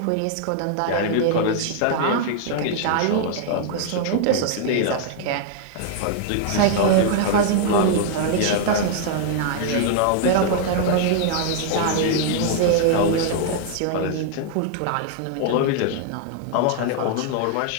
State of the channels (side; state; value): both; different; correlation -0.01